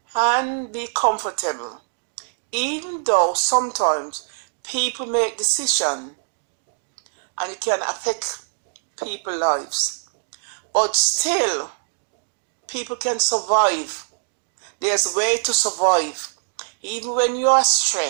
and be comfortable. Even though sometimes people make decisions and it can affect people's lives, but still people can survive. There's a way to survive. Even when you are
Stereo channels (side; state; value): left; silent; digital silence